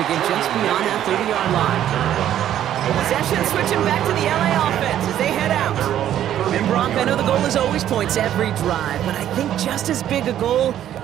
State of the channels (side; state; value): left; quieter; 11.3 dB